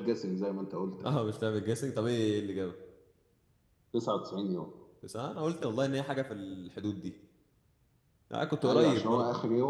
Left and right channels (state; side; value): identical; both; correlation 1.00